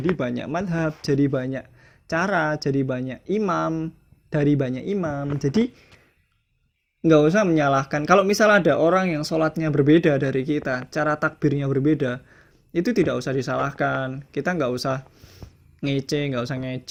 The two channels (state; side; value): identical; both; correlation 1.00